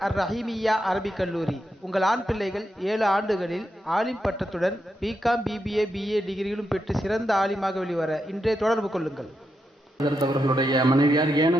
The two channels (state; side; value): normal; both; correlation 0.85